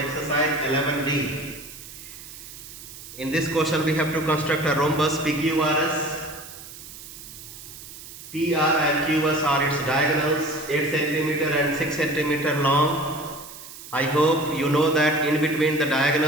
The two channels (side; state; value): right; noise; hiss, 15 dB below the sound